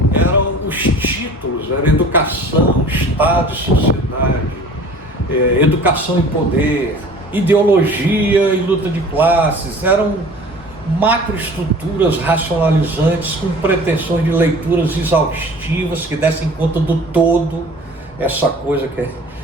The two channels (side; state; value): both; normal; correlation 0.45